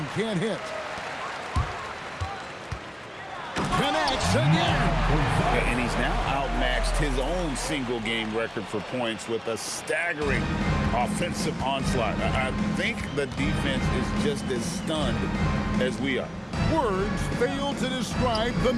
can't hit. Connects again. And he's now outmatched his own single-game record for points with a staggering offensive onslaught. I think the defense is just as stunned as we are. Words fail to describe the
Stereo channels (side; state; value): both; identical; correlation 1.00